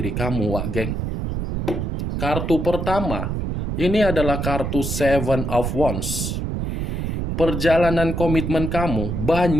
kamu, Wak Geng. Kartu pertama, ini adalah kartu Seven of Wands. Perjalanan komitmen kamu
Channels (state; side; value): noise; right; rumble, 2 dB below the sound